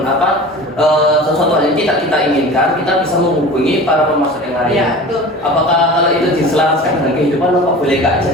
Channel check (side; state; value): both; normal; correlation 0.37